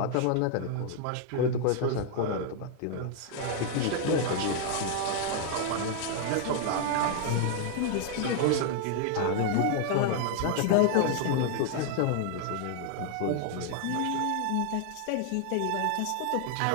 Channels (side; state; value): both; different; correlation 0.00